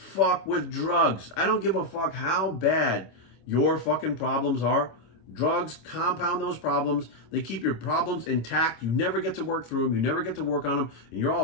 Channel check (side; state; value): right; late; 26 ms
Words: with drugs. I don't give a fuck how bad your fucking problems are. Drugs compound those problems. They keep your problems intact. You never get to work through them. You never get to work on them. And you're